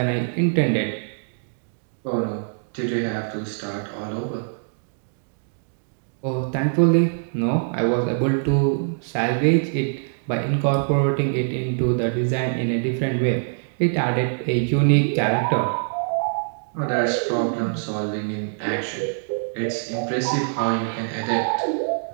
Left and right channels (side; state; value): left; silent; digital silence